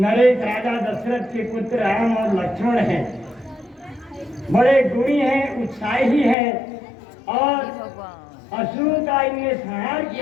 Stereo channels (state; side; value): drops out; right; at 6.4 s